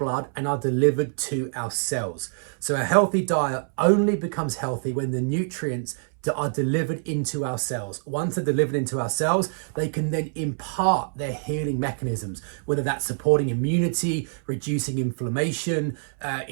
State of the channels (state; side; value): silent; left; 61 dB below the other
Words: and are delivered to our cells. So a healthy diet only becomes healthy when the nutrients that are delivered into our cells. Once they're delivered into our cells, they can then impart their healing mechanisms, whether that's supporting immunity, reducing inflammation,